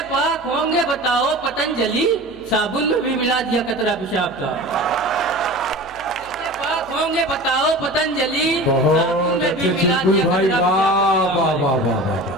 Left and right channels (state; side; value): noise; left; hum, 23 dB below the sound